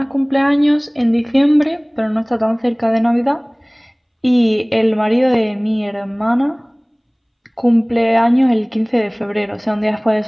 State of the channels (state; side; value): identical; both; correlation 1.00